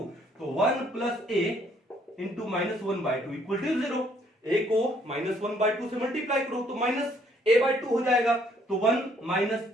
तो 1 plus a into -1/2 equal to 0। a को -1/2 से मल्टीप्लाई करो तो -a/2 हो जाएगा, तो 1 -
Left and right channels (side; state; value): both; normal; correlation 0.65